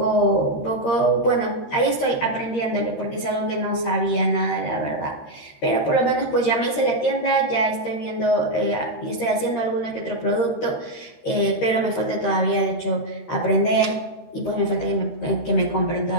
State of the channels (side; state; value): right; late; 13 ms